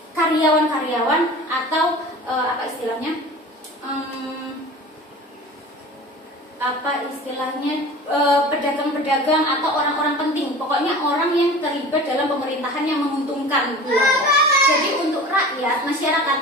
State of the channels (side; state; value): both; normal; correlation 0.39